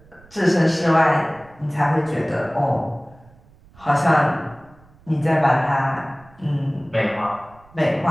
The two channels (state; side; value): noise; right; rumble, 27 dB below the sound